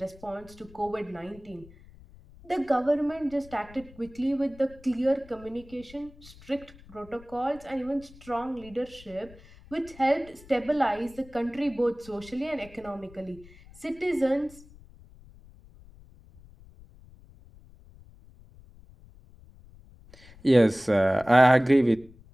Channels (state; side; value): noise; left; rumble, 22 dB below the sound